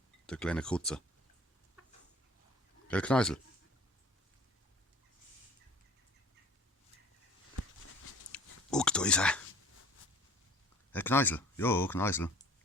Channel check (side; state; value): both; normal; correlation 0.47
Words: Der kleine Krutze. Der Kneisel. Guck, da ist er. Herr Kneisel. Jo, Kneisel.